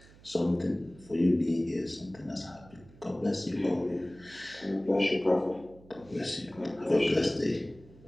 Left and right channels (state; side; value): noise; right; hum, 23 dB below the sound